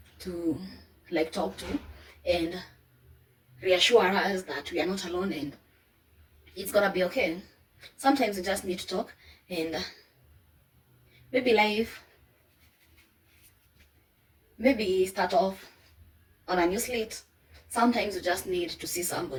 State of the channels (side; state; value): both; identical; correlation 1.00